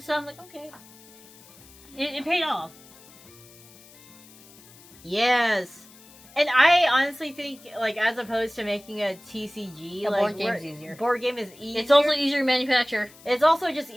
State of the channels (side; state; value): left; noise; hiss, 23 dB below the sound